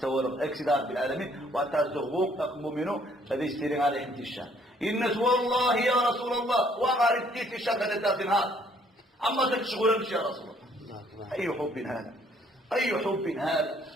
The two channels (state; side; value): normal; both; correlation 0.63